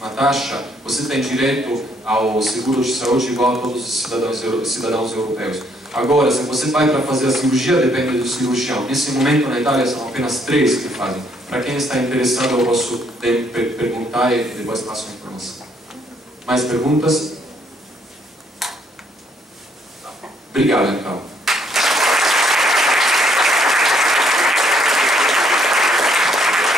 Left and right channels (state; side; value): normal; both; correlation 0.69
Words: taxa, você tem direito ao seguro de saúde igual a todos os cidadãos europeus. Agora, se você vai para fazer a cirurgia, depende do cirurgião. Nesse momento, na Itália, são apenas 3 que fazem. Para quem está interessado, eu posso perguntar e depois passo a informação. Mais perguntas? Obrigado, então.